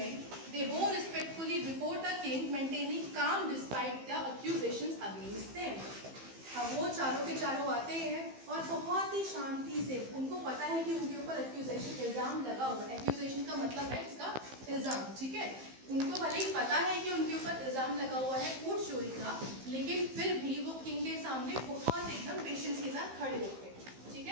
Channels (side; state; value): left; late; 15 ms